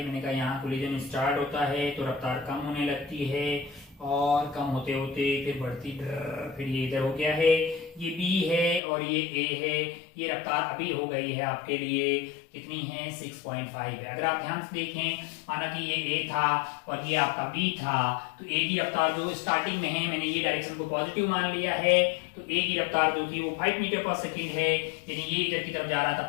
मैंने कहा यहाँ कोलिजन स्टार्ट होता है तो रफ्तार कम होने लगती है, और कम होते होते फिर बढ़ती, फिर ये इधर हो गया है, ये B है और ये A है। ये रफ्तार अभी हो गई है आपके लिए कितनी है 6.5 है। अगर आप ध्यान से देखें, माना कि ये ए था और ये आपका बी था, तो ए की रफ्तार जो स्टार्टिंग में है, मैंने ये डायरेक्शन को पॉजिटिव मान लिया है, तो ए की रफ्तार जो थी वो 5 मीटर पर सेकेंड है, यानी ये इधर की तरफ जा रहा था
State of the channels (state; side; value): drops out; right; at 8.8 s